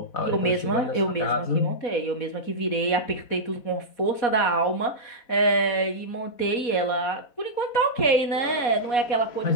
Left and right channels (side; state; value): right; late; 4.1 ms